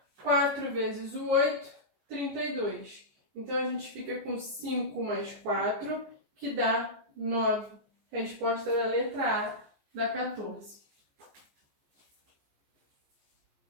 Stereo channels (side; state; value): left; late; 14 ms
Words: 4 vezes o 8, 32. Então, a gente fica com 5 mais 4, que dá 9. Resposta da letra A, da 14.